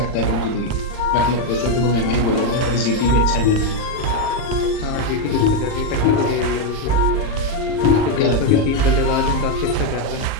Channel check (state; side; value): late; right; 39 ms